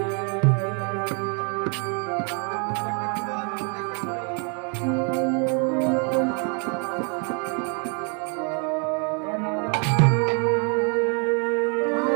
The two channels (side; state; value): left; quieter; 37.7 dB